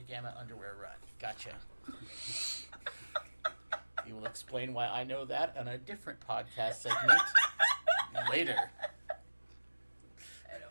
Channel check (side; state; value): both; inverted; correlation -1.00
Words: underwear run. Gotcha. You will explain why I know that on a different podcast segment later. I don't